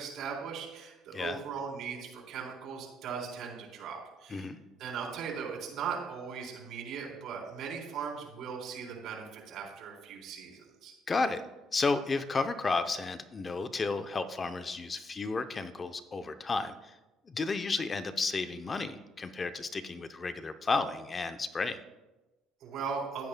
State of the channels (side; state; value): both; normal; correlation 0.79